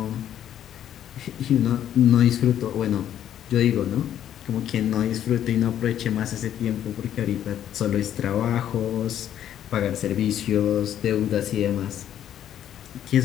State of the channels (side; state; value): right; quieter; 10.6 dB